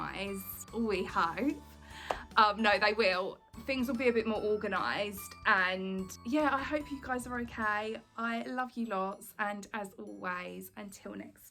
we hope. No, they will. Things will be a bit more organised, and yeah, I hope you guys are okay. I love you lots, and as always, until next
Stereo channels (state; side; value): identical; both; correlation 1.00